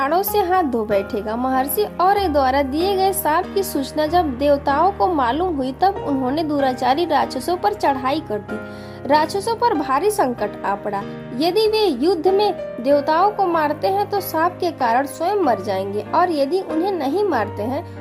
से हाथ धो बैठेगा। महर्षि और्य द्वारा दिए गए शाप की सूचना जब देवताओं को मालूम हुई, तब उन्होंने दुराचारी राक्षसों पर चढ़ाई कर दी। राक्षसों पर भारी संकट आ पड़ा। यदि वे युद्ध में देवताओं को मारते हैं तो शाप के कारण स्वयं मर जाएंगे, और यदि उन्हें नहीं मारते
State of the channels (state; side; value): identical; both; correlation 1.00